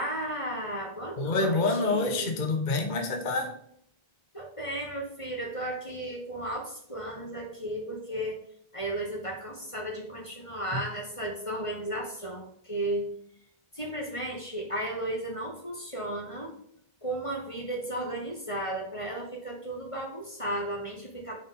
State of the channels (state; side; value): late; right; 1.5 ms